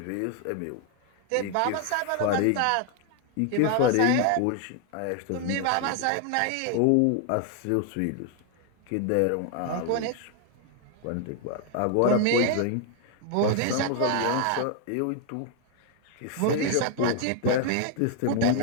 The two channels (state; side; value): different; both; correlation 0.00